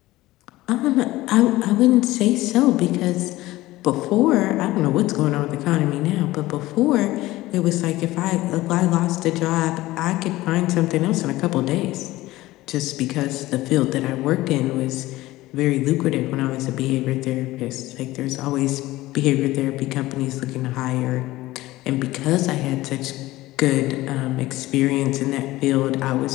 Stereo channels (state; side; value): quieter; right; 17.7 dB